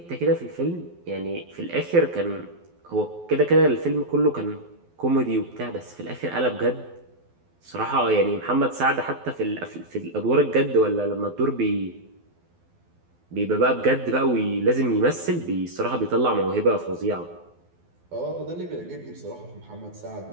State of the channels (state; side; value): late; left; 12 ms